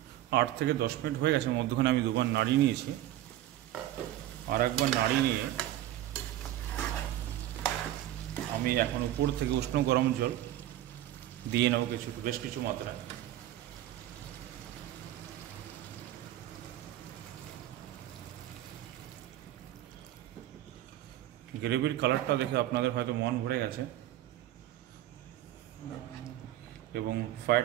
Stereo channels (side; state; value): left; quieter; 13.7 dB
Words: 8 থেকে 10 মিনিট হয়ে গেছে, মধ্যখানে আমি দুবার নাড়িয়ে নিয়েছি। আর একবার নাড়িয়ে নিয়ে আমি এখন উপর থেকে উষ্ণ গরম জল দিয়ে নেব বেশ কিছু মাত্রায়। গ্রেভির কালারটা দেখে আপনাদের হয়তো মন ভরে গেছে, এবং